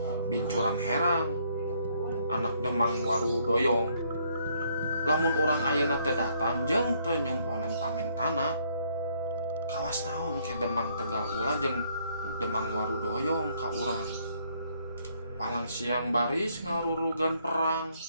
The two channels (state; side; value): inverted; both; correlation -0.68